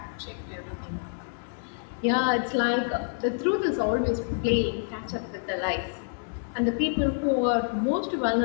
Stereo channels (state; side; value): silent; right; digital silence